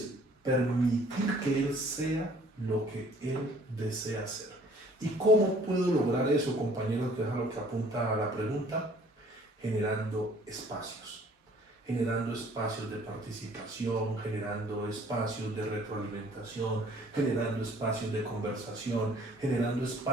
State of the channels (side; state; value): both; normal; correlation 0.56